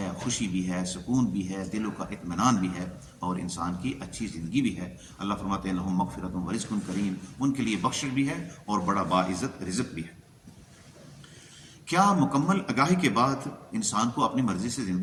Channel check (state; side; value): identical; both; correlation 1.00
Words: خوشی بھی ہے، سکون بھی ہے، دلوں کا اطمینان بھی ہے اور انسان کی اچھی زندگی بھی ہے. اللہ فرماتے ہیں لہم مغفرۃ ورزق کریم، ان کے لیے بخشش بھی ہے اور بڑا باعزت رزق بھی ہے. کیا مکمل آگاہی کے بعد انسان کو اپنی مرضی سے